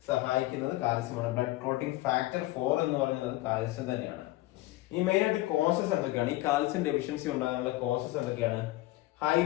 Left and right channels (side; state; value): right; quieter; 18.1 dB